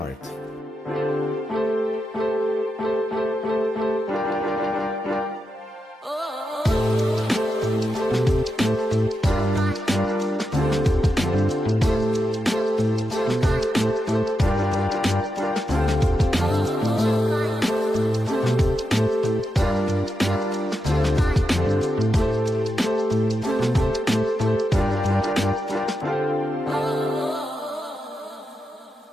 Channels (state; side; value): normal; both; correlation 0.87